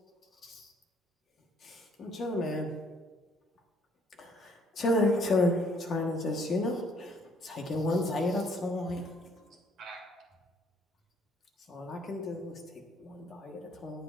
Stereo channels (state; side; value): normal; both; correlation 0.64